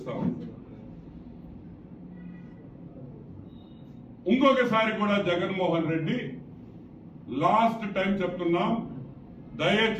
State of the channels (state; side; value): identical; both; correlation 1.00